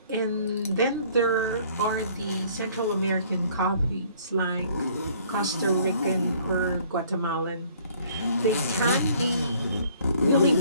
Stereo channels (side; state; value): both; inverted; correlation -0.58